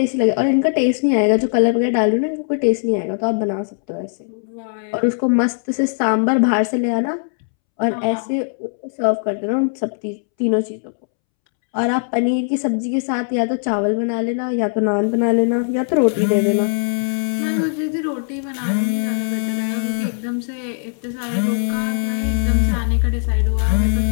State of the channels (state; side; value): silent; right; 66 dB below the other